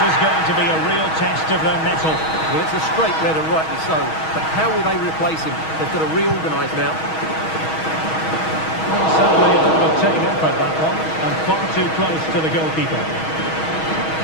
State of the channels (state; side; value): late; right; 6.3 ms